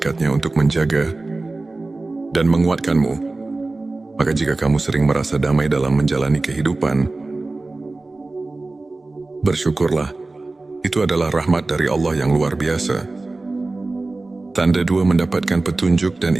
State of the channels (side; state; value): left; quieter; 3.2 dB